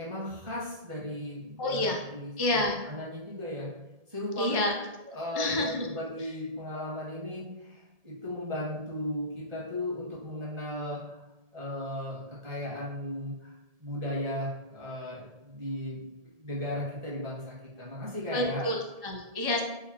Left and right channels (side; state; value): left; late; 1.7 ms